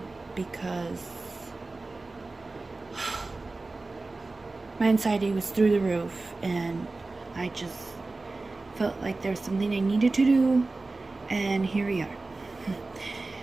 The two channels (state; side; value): quieter; left; 3.4 dB